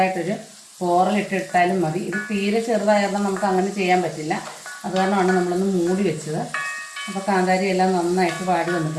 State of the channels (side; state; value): both; identical; correlation 1.00